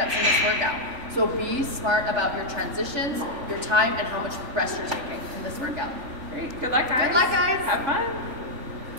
in this workout. So be smart about your transitions, your time, and how much rest you're taking in this workout. Great, good luck guys. Good luck guys. Have fun.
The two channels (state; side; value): late; left; 3.4 ms